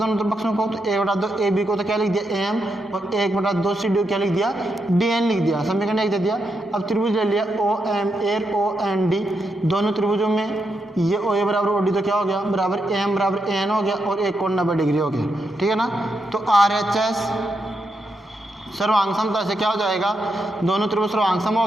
पक्षों को। तो 1/2 ए बी को तो क्या लिख दिया, ए एम, और 1/2 सी डी को क्या लिख दिया, डी एन लिख दिया, समीकरण 1 दे दिया। अब त्रिभुज ले लिया O M A O N D, दोनों त्रिभुजों में ये ओ ए बराबर ओ डी तो क्या हो गया, बराबर ए एम बराबर ए एन हो गया, और एक कोण 90 डिग्री हो गया। ठीक है ना, तो आर एच एस सर्वांग समता से क्या हो जाएगा, दोनों त्रिभुज सर्वांग सम हो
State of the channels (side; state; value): both; normal; correlation 0.83